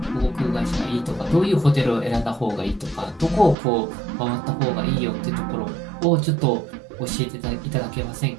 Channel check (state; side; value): drops out; left; at 3.6 s